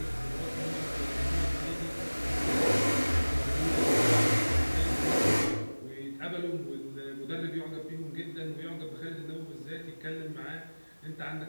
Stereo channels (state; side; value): inverted; both; correlation -1.00